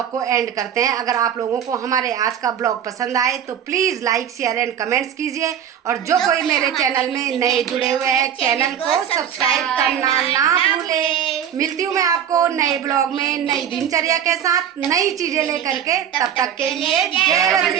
को एंड करते हैं। अगर आप लोगों को हमारे आज का ब्लॉग पसंद आए तो please like share and comments कीजिए, और जो कोई मेरे चैनल में नए जुड़े हुए हैं चैनल को सब्सक्राइब करना ना भूलें। मिलती हूँ मैं आपको नए ब्लॉग में नई दिनचर्या के साथ, नई चीज़ें लेकर के। तब तक के लिए जय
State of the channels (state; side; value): quieter; left; 9.1 dB